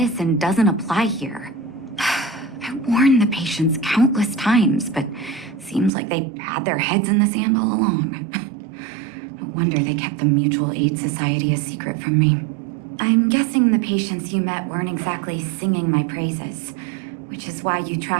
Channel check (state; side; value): drops out; left; at 5.9 s